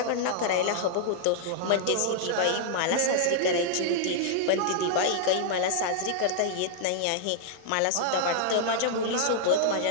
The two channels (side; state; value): both; different; correlation -0.01